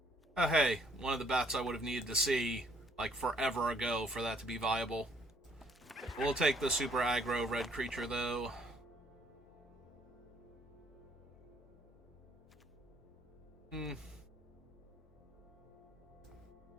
Oh hey, one of the bats I would have needed to see, like, forever ago for that to be viable. We'll take the super aggro red creature, though.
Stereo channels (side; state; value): both; normal; correlation 0.64